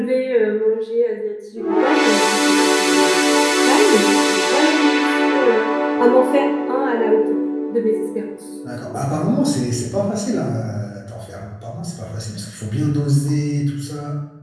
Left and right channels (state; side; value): identical; both; correlation 1.00